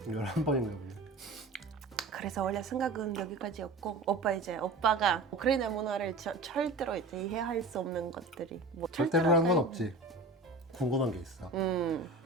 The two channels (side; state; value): left; quieter; 3.2 dB